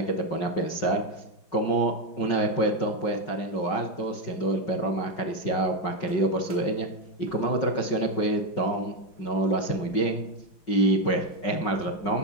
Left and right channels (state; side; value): late; right; 5.4 ms